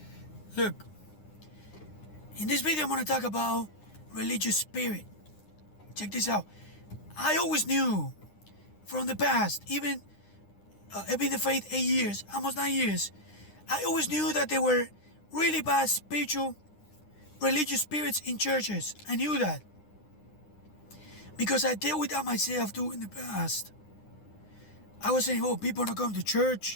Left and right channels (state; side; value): late; right; 9.8 ms